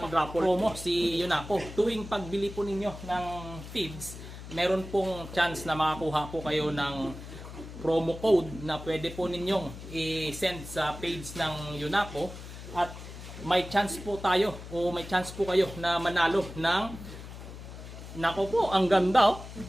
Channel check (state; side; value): noise; left; hum, 12 dB below the sound